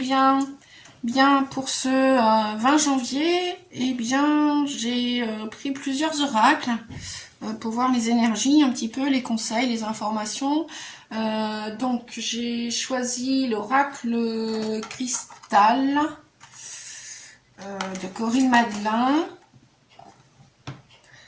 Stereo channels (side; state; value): both; identical; correlation 1.00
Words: Bien, pour ce 20 janvier, eh bien, j'ai pris plusieurs oracles pour voir les énergies, un petit peu, les conseils, les informations. Donc, j'ai choisi l'oracle cristal de Corinne Madelin.